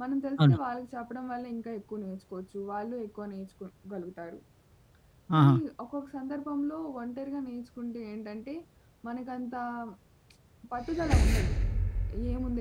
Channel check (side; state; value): both; identical; correlation 1.00